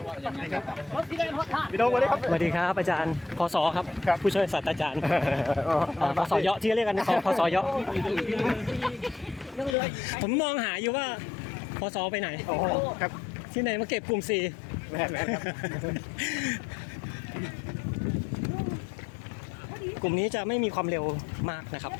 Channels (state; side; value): drops out; right; at 9.8 s